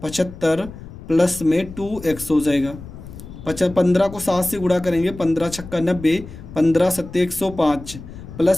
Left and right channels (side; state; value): left; noise; rumble, 14 dB below the sound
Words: 75, प्लस में 2x हो जाएगा। 15 को 7 से गुणा करेंगे, 15 छक्का 90, 15 सत्ते 105,